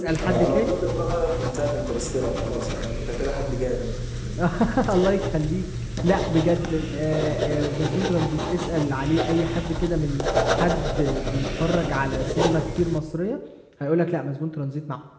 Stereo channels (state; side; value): identical; both; correlation 1.00